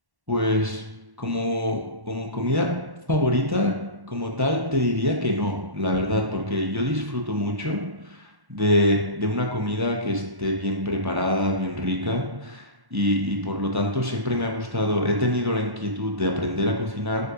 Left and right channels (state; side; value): late; left; 1.1 ms